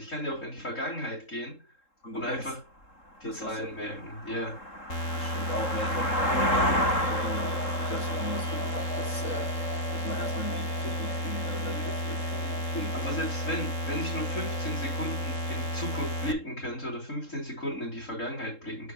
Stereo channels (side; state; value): right; late; 3.7 ms